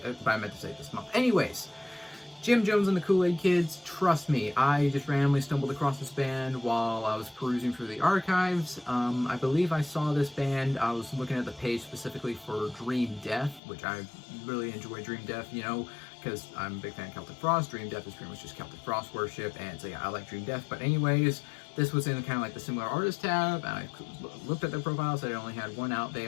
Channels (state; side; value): drops out; right; at 13.6 s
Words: but I meant to say this month. Anyways, Jim Jones and the Kool-Aid Kids, trust me, I just randomly stumbled across this band while I was perusing through the archives. I believe I saw this band, I was looking at the page specifically for Dream Death, which I really enjoy Dream Death, you know, because I'm a big fan of Celtic Frost. Dream Death is pretty much just Celtic Frost worship, and so yeah, I like Dream Death. But anyways, this was in kind of like the similar artist tab, and I looked at their profiles, they only had one